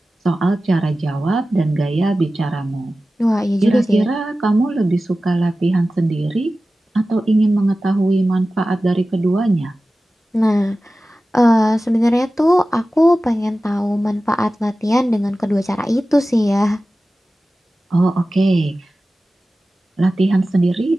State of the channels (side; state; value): both; normal; correlation 0.95